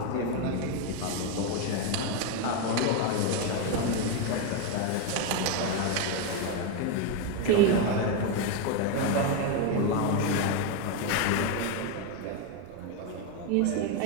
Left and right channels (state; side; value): different; both; correlation 0.02